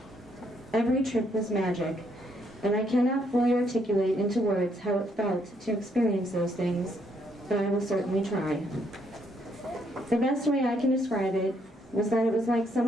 Every trip was magic, and I cannot fully articulate into words how it felt to experience those things, but I will certainly try. The best way I can describe it was that it was like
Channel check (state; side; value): normal; both; correlation 0.72